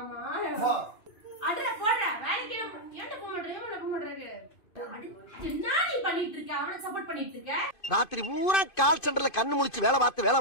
அடடா போடா வேலைக்கு ஏன்டா போக மாட்டேங்க? என்ன போக மாட்டேங்க? என்ன நீ பண்ணிட்டு இருக்க? அவனை சப்போர்ட் பண்ணிட்டு இருக்க? ராத்திரி பூரா கால் சென்டர்ல கண்ணு முழிச்சு வேலை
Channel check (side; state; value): right; late; 2.5 ms